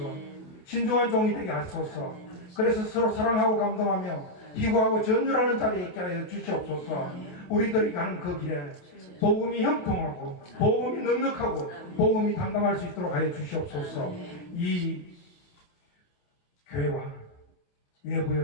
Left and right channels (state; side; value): late; right; 28 ms